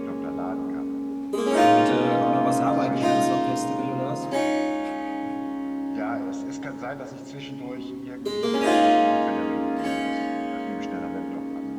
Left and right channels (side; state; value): both; identical; correlation 1.00